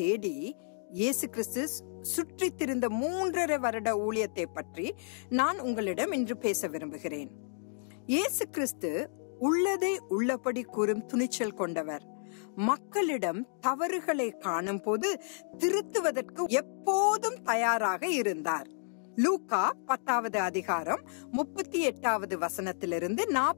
இயேசு கிறிஸ்து சுற்றி திரிந்த 3.5 வருட ஊழியத்தை பற்றி நான் உங்களிடம் இன்று பேச விரும்புகிறேன். இயேசு கிறிஸ்து உள்ளதை உள்ளபடி கூறும் துணிச்சல் கொண்டவர். மக்களிடம் தவறுகளை காணும் போது திருத்துவதற்கு எப்போதும் தயாராக இருந்தார். லூக்கா 10வது அதிகாரம் 38வது வசனத்திலிருந்து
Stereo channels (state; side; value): silent; right; digital silence